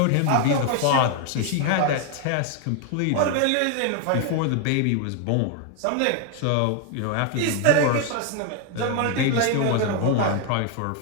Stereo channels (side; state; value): both; different; correlation 0.00